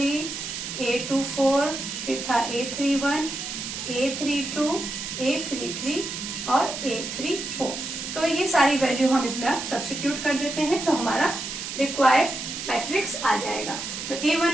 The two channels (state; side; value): noise; right; hiss, 6 dB below the sound